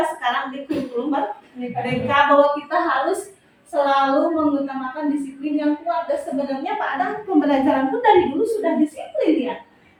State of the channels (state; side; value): identical; both; correlation 1.00